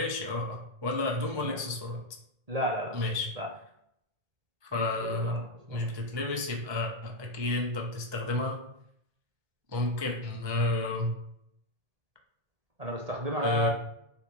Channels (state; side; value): late; left; 1.3 ms